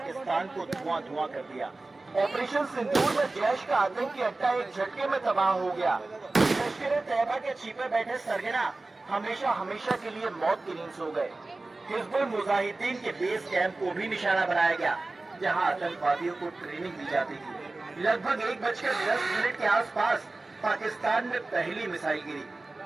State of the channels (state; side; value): quieter; left; 3.2 dB